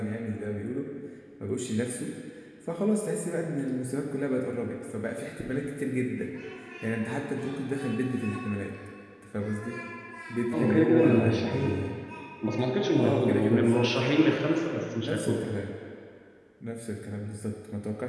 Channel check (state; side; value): identical; both; correlation 1.00